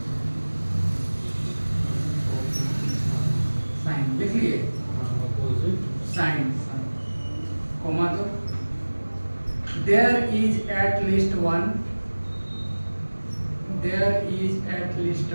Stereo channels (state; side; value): inverted; both; correlation -1.00